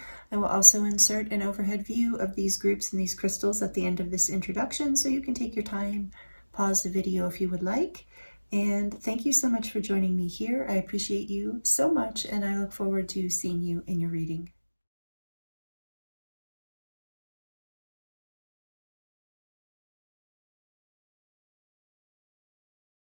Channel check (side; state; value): both; inverted; correlation -1.00